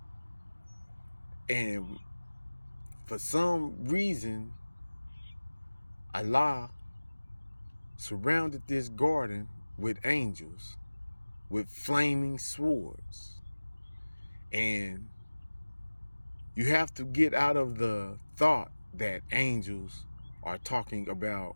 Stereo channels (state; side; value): inverted; both; correlation -1.00